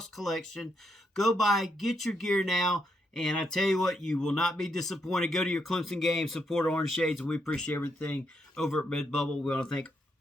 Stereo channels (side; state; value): both; normal; correlation 0.79